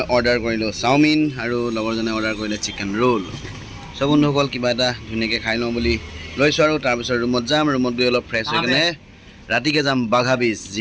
অৰ্ডাৰ কৰিলোঁ চাওমিন আৰু লগৰজনে অৰ্ডাৰ কৰিলে চিকেন ৰোল চ' বন্ধুসকল কিবা এটা ধুনীয়াকৈ খাই লওঁ বুলি লৈছোঁ আৰু তাৰপিছত ৰুমত যাম ৰুমত গৈ অলপ ফ্ৰেছ হৈ কিনে ৰাতিকৈ যাম বাঘা বীচ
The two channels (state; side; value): identical; both; correlation 1.00